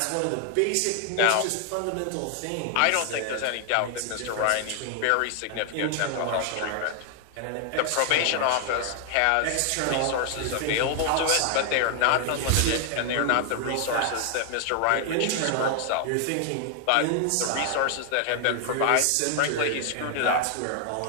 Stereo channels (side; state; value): both; different; correlation 0.00